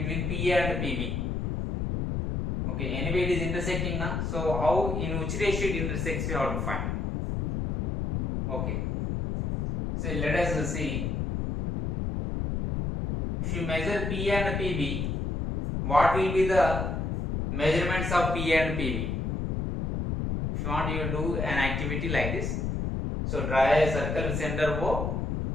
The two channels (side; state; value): left; noise; rumble, 1 dB below the sound